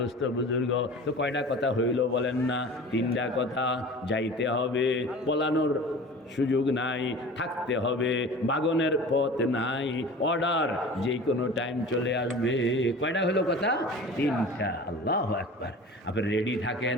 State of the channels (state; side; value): normal; both; correlation 0.39